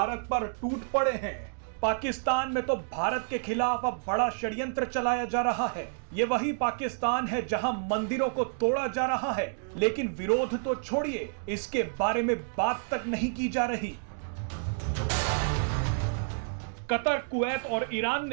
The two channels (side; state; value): left; silent; digital silence